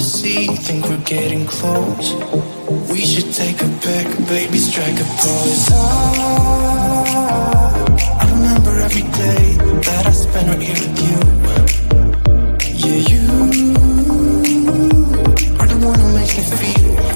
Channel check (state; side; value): inverted; both; correlation -1.00